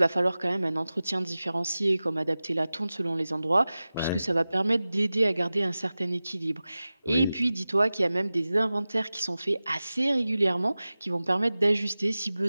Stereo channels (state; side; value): inverted; both; correlation -0.96